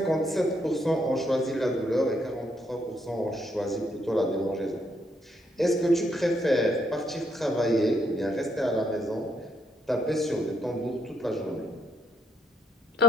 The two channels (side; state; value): both; normal; correlation 0.74